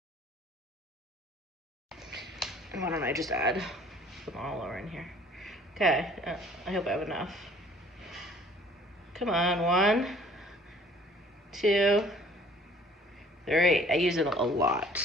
Why don't I just add them all over in here? Okay, I hope I have enough. Come on, 1, 2, 3. I use it a lot.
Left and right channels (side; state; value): both; normal; correlation 0.54